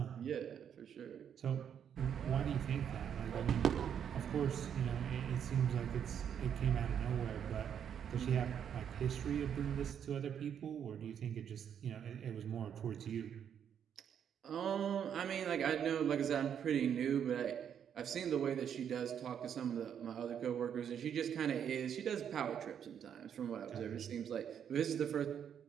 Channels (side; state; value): left; quieter; 8.5 dB